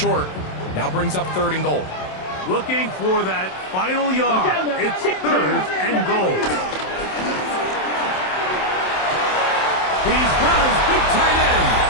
Now brings up 3rd and goal. Looking for that final yard. It's 3rd and goal. He's got his big tight end.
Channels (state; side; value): late; right; 27 ms